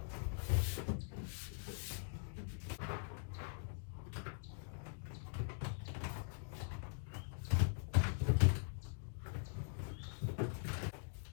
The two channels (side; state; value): right; silent; digital silence